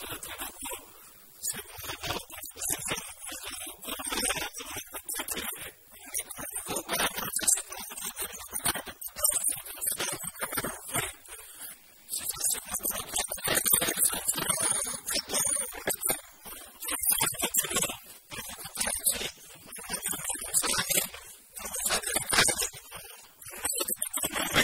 यात्राटा हुओ से महाबाहु बड़ दियो ही आमको ए जो कोरोना कबल रक्षा करिवे है कोरोना कबल हो बा हमर चासी कुल को जो विभिन्न प्रकार विपत्ति आसुची केतल को प्रकार रूप रे से चासी कुल को रक्षा कले का ए संसार खाद्य गंडे पाइबो संसार बंचिबो कारण जो कथारे अछि अन्न बिहुने हंस हानि जोगो साधिवा काहा गेनी अन्न जदि पेटू न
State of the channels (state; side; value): identical; both; correlation 1.00